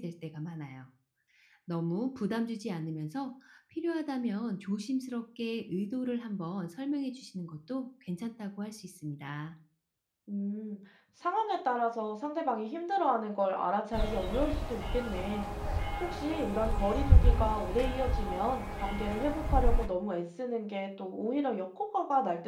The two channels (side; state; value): both; identical; correlation 1.00